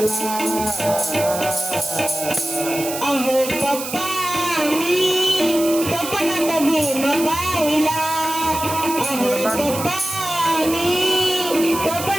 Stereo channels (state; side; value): noise; right; hiss, 7 dB below the sound